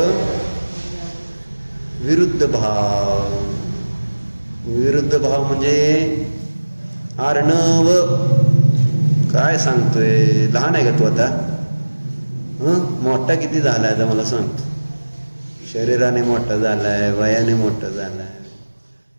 विरुद्ध भाव, विरुद्ध भाव म्हणजे अर्णव काय सांगतोय? लहान आहे का तू आता? मोठा किती झालाय आता मला सांगतो. शरीराने मोठा झालाय, वयाने मोठा झालाय.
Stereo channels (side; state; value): both; inverted; correlation -1.00